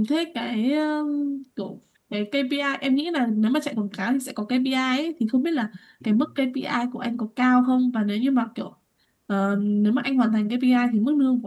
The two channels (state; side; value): identical; both; correlation 1.00